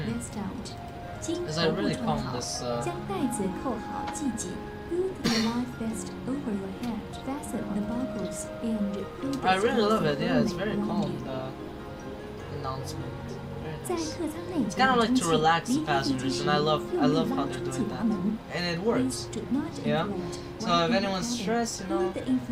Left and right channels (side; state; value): both; identical; correlation 1.00